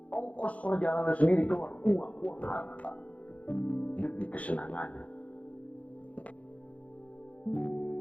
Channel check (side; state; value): right; late; 0.066 ms